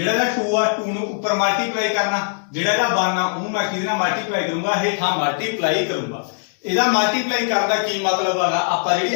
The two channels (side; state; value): right; silent; 65 dB below the other